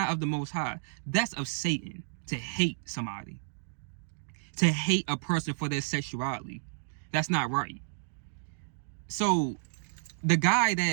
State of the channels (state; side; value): silent; left; digital silence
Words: of the Most High. That's of Satan, to hate somebody. To hate a person for their sexuality. That's not right. So the guy